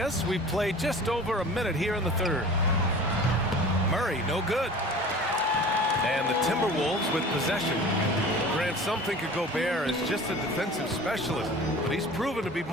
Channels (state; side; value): normal; both; correlation 0.41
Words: us, we've played just over a minute here in the third. Murray, no good. And the Timberwolves with possession. Grant, some think of Gobert as just a defensive specialist, but he's proven to be